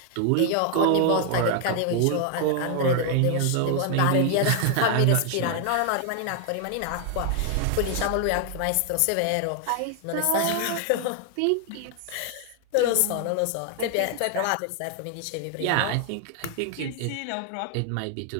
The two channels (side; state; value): both; different; correlation 0.00